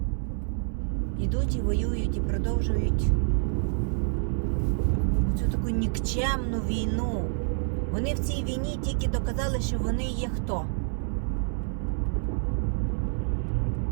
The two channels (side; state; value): left; silent; 60 dB below the other